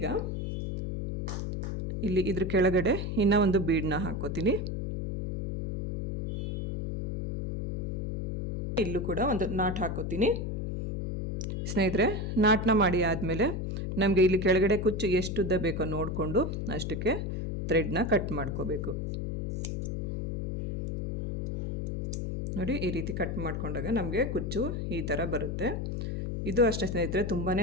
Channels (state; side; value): noise; left; hum, 2 dB below the sound